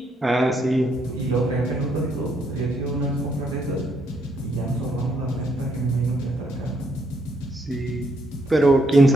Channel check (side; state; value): both; normal; correlation 0.73